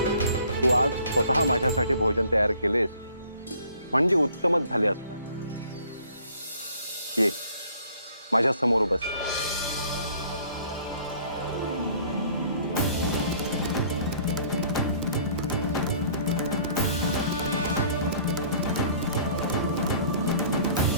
तू आज स्वतः माझ्यासाठी भोजन तयार केलेस म्हणजे उत्तमच झाले असणार. ये माझ्या समोर बस.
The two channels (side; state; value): both; inverted; correlation -0.55